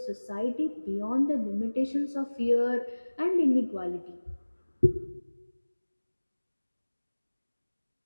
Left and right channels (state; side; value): inverted; both; correlation -1.00